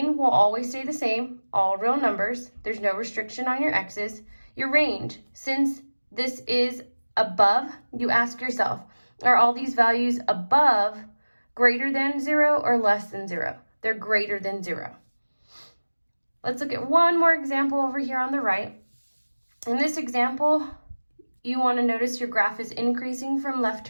will always stay the same, all real numbers. There's no restriction on your x's. Your range, since this is above, you ask yourself, are all these values above greater than 0 or less than 0? They're greater than 0. Let's look at one more example over here on the right. In this example, you want to notice your graph is increasing from left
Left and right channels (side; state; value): both; inverted; correlation -1.00